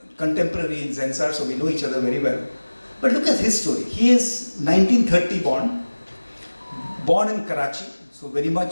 contemporary in Zensar, so we know each other very well. But look at his story. He is 1930 born in Karachi, so very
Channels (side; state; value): both; inverted; correlation -1.00